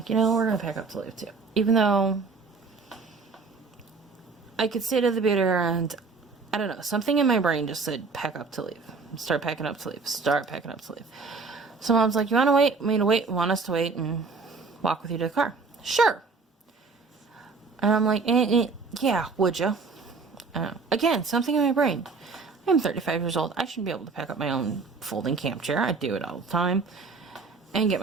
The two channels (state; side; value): quieter; left; 4.4 dB